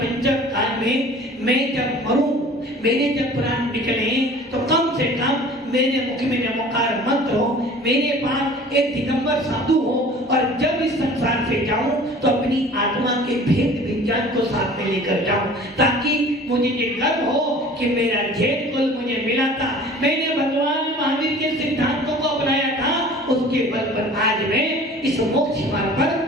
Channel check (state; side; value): normal; both; correlation 0.45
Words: काल में मैं जब मरूं, मेरे जब प्राण निकले तो कम से कम मेरे मुख में नमोकार मंत्र हो, मेरे पास एक दिगंबर साधु हो, और जब इस संसार से जाऊं तो अपनी आत्मा के भेद विज्ञान को साथ में लेकर जाऊं, ताकि मुझे ये गर्व हो कि मेरा जैन कुल मुझे मिला था, मैंने भगवान महावीर के सिद्धांतों को अपनाया था, उसके बल पर आज मैं इस मोक्ष मार्ग